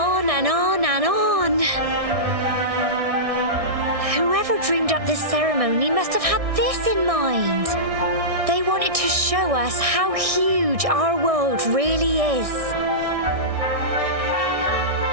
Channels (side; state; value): left; late; 1.6 ms